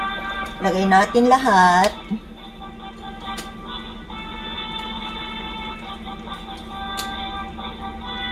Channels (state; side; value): identical; both; correlation 1.00